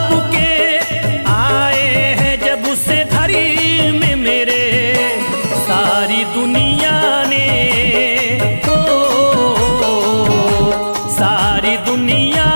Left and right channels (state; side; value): inverted; both; correlation -1.00